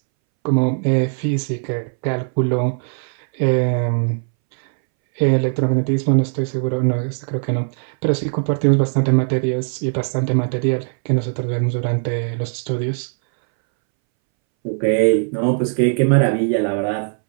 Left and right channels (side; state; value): left; silent; 64 dB below the other